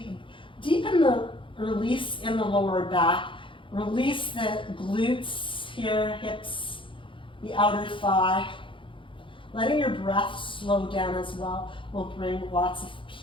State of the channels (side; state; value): right; late; 0.25 ms